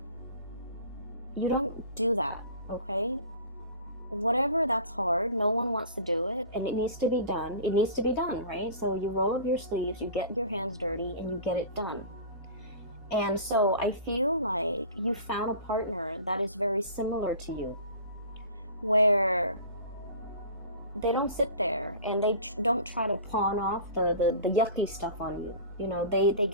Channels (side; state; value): both; inverted; correlation -0.40